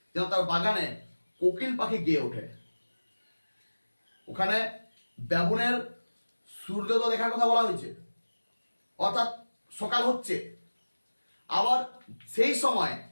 যেন তার বাগানে কোকিল পাখি গেয়ে ওঠে। ওখানে বাবুনের সূর্যোদয় দেখার কথা বলা হয়েছে, অর্থাৎ সকাল হচ্ছে। আবার সেই সময়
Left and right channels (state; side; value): inverted; both; correlation -1.00